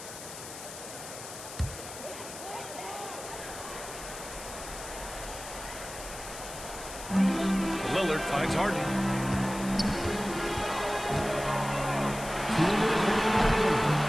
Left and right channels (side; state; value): left; noise; hiss, 11 dB below the sound